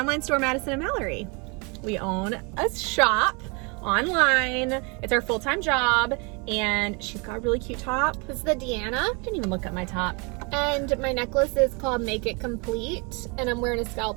store, Madison and Mallory. We own a shop online. It's our full-time job, and she's got a really cute top. This is the Deanna. Didn't even look at my top. And my necklace is called Make It Complete, and I'm wearing a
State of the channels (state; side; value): quieter; left; 31.3 dB